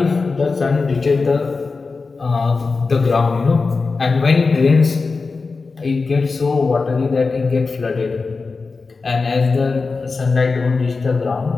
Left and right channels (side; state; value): right; quieter; 4.2 dB